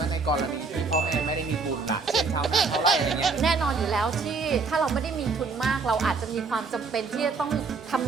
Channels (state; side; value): quieter; left; 4.5 dB